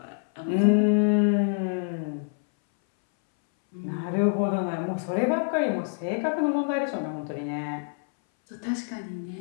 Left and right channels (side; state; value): right; silent; 60 dB below the other